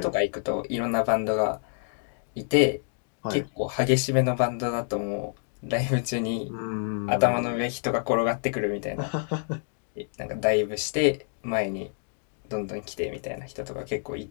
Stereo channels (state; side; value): silent; right; digital silence